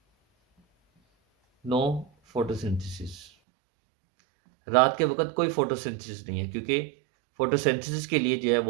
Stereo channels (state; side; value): drops out; left; at 3.2 s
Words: नो फोटोसिंथेसिस। रात के वक्त कोई फोटोसिंथेसिस नहीं है क्योंकि फोटोसिंथेसिस के लिए जो है